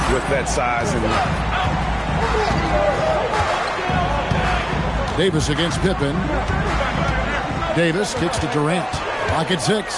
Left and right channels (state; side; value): identical; both; correlation 1.00